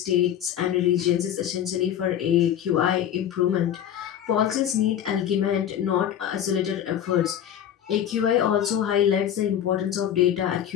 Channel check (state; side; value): quieter; right; 10.1 dB